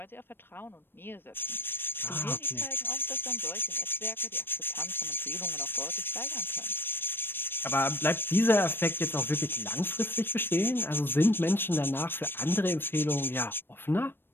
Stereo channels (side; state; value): right; late; 0.10 ms